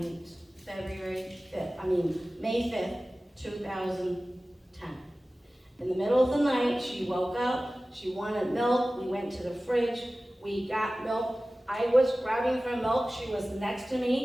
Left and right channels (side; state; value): both; normal; correlation 0.97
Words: May 5th, 2010. In the middle of the night, she woke up, she wanted milk, we went to the fridge, we got milk. I was grabbing for milk, she was next to